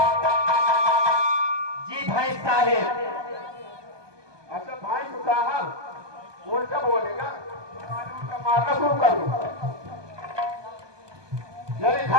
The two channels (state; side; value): late; left; 1.2 ms